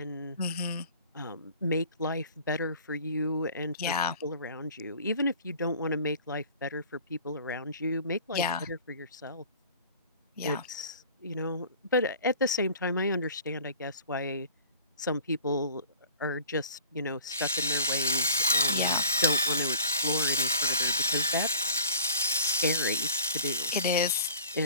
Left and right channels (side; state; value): both; inverted; correlation -0.47